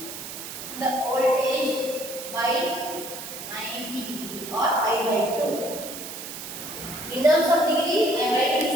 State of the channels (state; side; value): noise; right; hiss, 9 dB below the sound